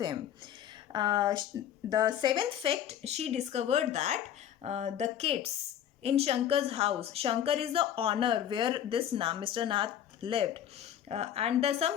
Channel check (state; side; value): quieter; right; 10.2 dB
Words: The 7th fact, she discovered that the kids in Shankar's house, Shankar is the owner where this Mr. Nath lived. And there's